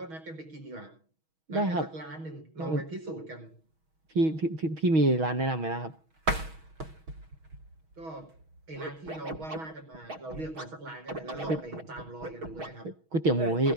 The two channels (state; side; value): late; left; 6.3 ms